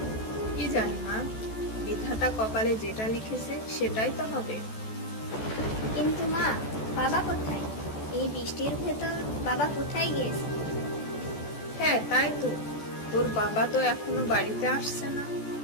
কি জানি মা, বিধাতা কপালে যেটা লিখেছে সেটাই তো হবে। কিন্তু মা, বাবা কোথায়? এই বৃষ্টির ভেতর বাবা কোথায় গিয়েছে? হ্যাঁ তাই তো, তোর বাবা তো এখনো বাড়িতে আসছে না।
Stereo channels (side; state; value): right; late; 14 ms